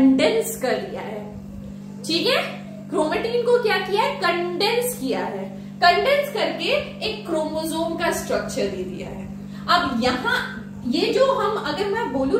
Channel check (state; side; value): identical; both; correlation 1.00